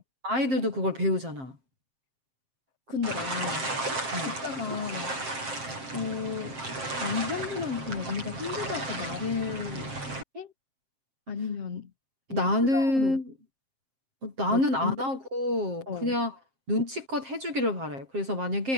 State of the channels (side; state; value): left; late; 7.5 ms